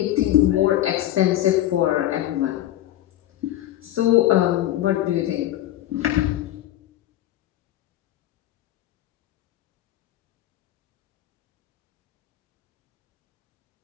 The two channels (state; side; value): quieter; right; 13.5 dB